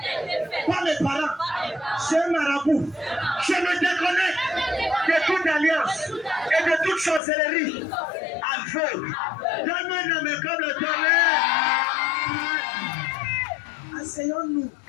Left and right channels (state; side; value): drops out; right; at 7.2 s